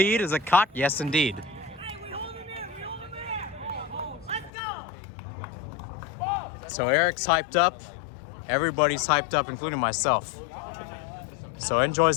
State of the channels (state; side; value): drops out; right; at 4.5 s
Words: is it caught? Yes, indeed. So Eric's hyped up. Everybody's hyped up, including myself. So NJoys